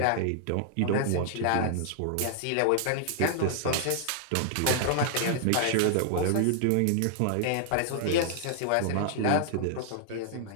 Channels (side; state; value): both; different; correlation -0.01